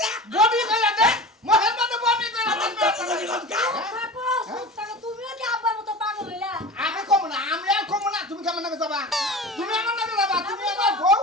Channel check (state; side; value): normal; both; correlation 0.33